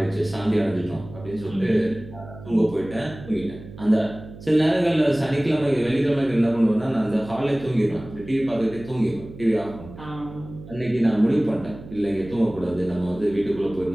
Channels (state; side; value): noise; right; hum, 16 dB below the sound